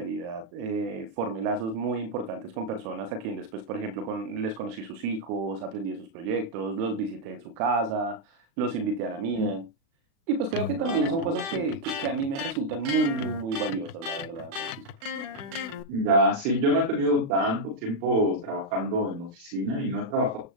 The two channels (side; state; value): left; late; 36 ms